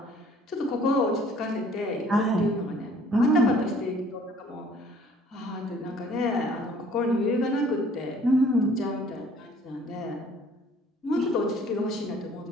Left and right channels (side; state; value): both; normal; correlation 0.56